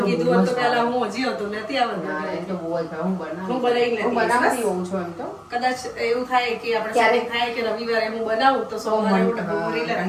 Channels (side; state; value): both; identical; correlation 1.00